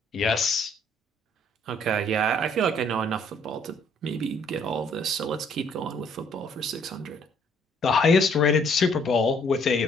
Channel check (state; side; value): normal; both; correlation 0.64